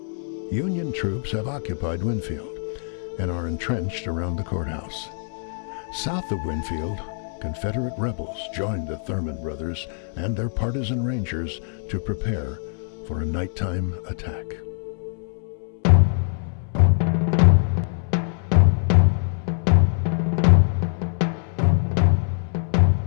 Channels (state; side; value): silent; right; 63 dB below the other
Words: Union troops have occupied Winfield and are entrenched around the courthouse. South of Winfield, Confederate rebels joined the Thurman brothers and their partisan rangers to prepare for a nighttime attack.